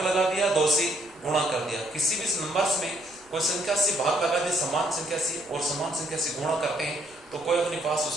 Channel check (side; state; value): left; noise; rumble, 28 dB below the sound